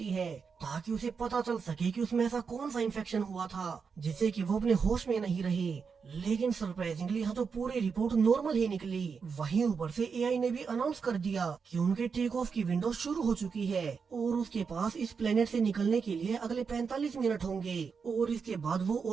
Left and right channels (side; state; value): left; quieter; 5.7 dB